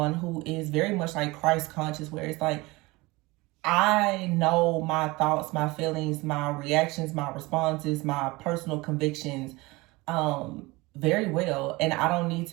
who is very much like Christ conscious, where it's like, I know my thoughts, my feelings, my reactions, my responses, my personal convictions very well, and I don't need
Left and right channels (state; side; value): quieter; left; 22.6 dB